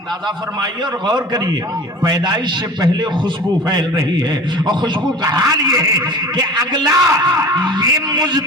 فرمائیے اور غور کریے، پیدائش سے پہلے خوشبو پھیل رہی ہے، اور خوشبو کا حال یہ ہے کہ اگلا یہ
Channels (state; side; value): normal; both; correlation 0.38